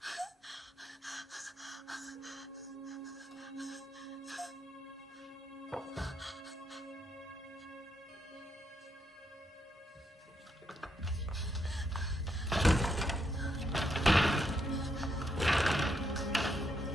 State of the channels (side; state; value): both; normal; correlation 0.78